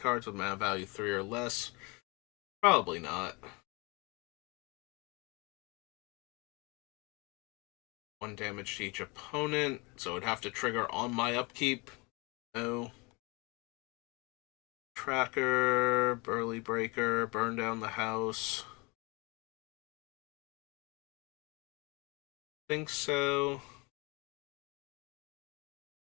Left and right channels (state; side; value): quieter; right; 27.8 dB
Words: with mana value 3 or less? Probably not. 1 damage to each opponent, so it'd have to trigger on my upkeep. No. Tracker, Burly Breaker, burn down the house. Think so.